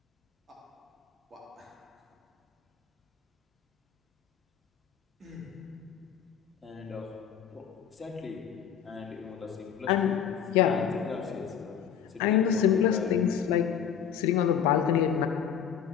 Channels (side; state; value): right; quieter; 8.4 dB